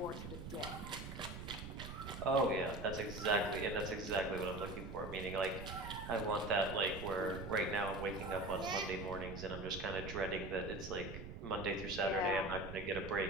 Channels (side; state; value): right; noise; rumble, 9 dB below the sound